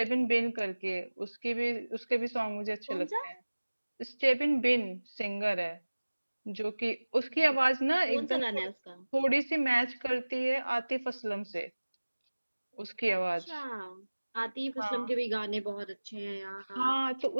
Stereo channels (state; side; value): inverted; both; correlation -1.00